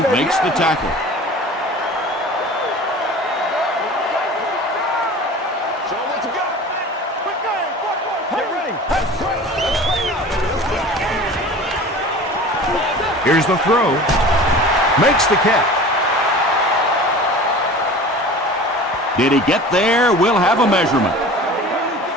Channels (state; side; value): normal; both; correlation 0.39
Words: makes the tackle. Here's the throw. Makes the catch. Did he get there? We'll have a measurement.